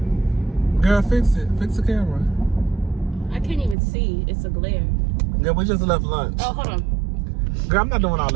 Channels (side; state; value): left; drops out; at 3.8 s